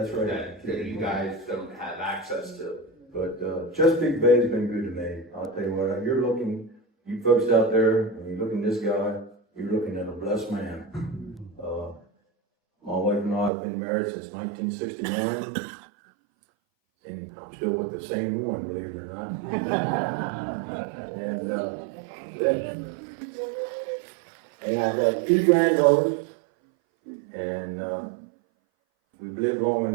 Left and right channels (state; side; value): drops out; left; at 13.5 s